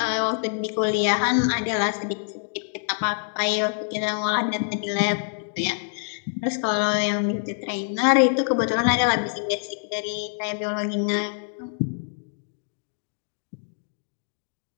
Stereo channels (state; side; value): silent; right; digital silence